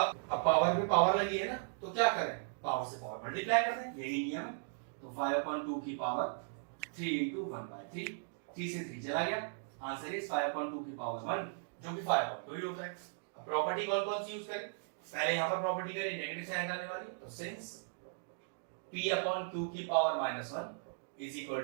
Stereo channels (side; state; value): left; silent; digital silence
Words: पावर पे पावर लगी है ना, तो क्या करें, पावर से पावर मल्टीप्लाई कर दें, यही नियम है। तो 5/2 की पावर 3 into 1/3, 3 से 3 चला गया, आंसर इज 5/2 की पावर 1, जो कि 5/2 ही होता है। अब प्रॉपर्टी कौन कौन सी यूज करें, पहले यहां पर प्रॉपर्टी करें नेगेटिव साइन हटाने वाली, तो सिंस p/q की power -1 is equal